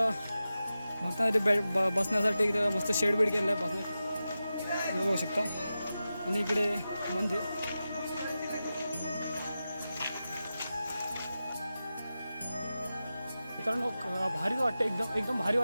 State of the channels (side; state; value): both; inverted; correlation -0.92